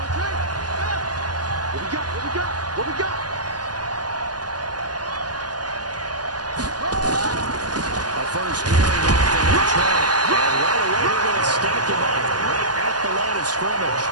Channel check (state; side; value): late; left; 0.69 ms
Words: First carry now for Trent. And right away they're going to stack him up right at the line of scrimmage.